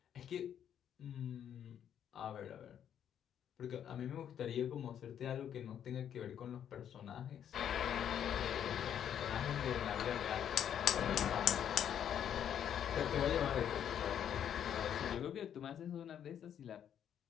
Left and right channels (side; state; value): right; quieter; 9.3 dB